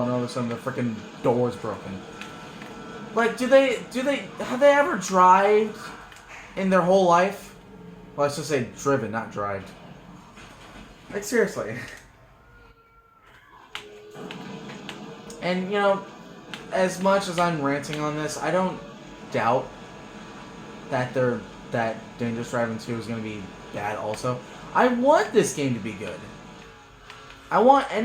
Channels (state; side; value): identical; both; correlation 1.00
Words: and all of a sudden the freaking door's broken. Like, have they ever drive in their whole life? Well, let's just say driven, not drived. Like, seriously. And, you know, as much as I'm ranting on this, I don't doubt that that Dangerous Driving 2 is going to be bad also. I want this game to be good. I want